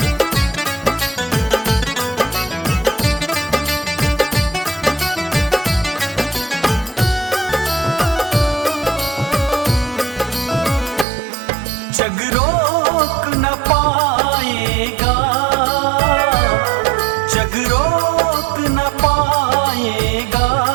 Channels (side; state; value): left; drops out; at 11.1 s